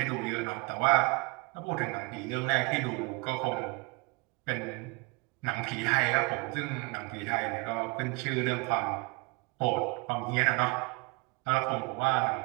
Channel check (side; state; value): left; quieter; 28.0 dB